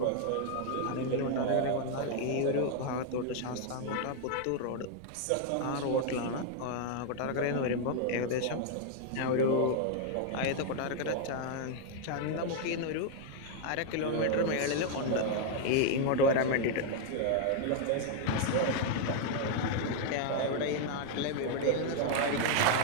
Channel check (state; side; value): different; both; correlation 0.00